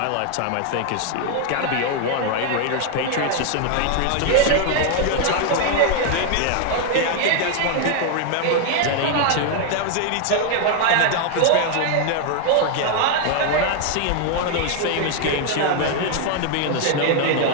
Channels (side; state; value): both; different; correlation 0.00